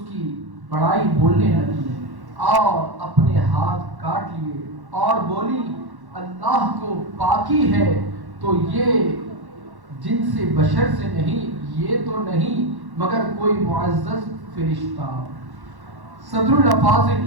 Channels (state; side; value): late; left; 1.1 ms